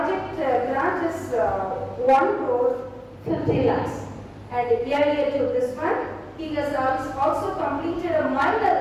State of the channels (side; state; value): both; identical; correlation 1.00